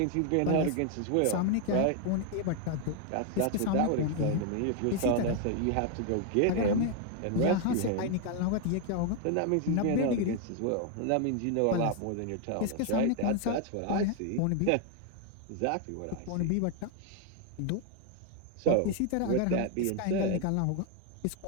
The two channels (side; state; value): both; different; correlation 0.01